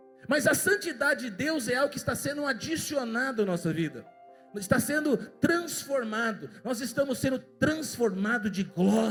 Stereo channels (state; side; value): identical; both; correlation 1.00